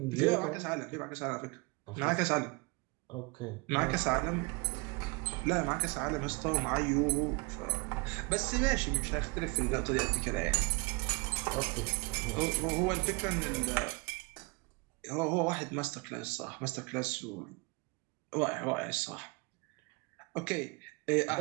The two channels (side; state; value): left; quieter; 28.4 dB